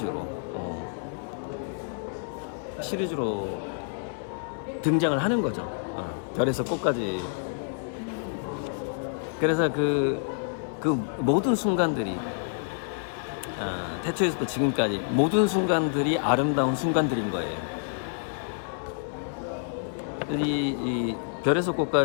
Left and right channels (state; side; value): silent; right; 59 dB below the other